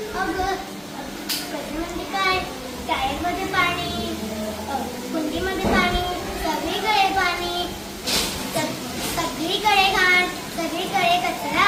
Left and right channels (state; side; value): identical; both; correlation 1.00